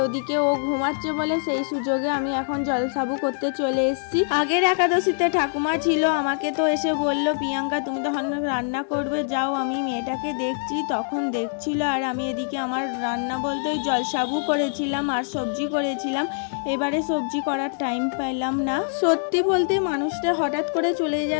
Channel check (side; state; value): right; silent; digital silence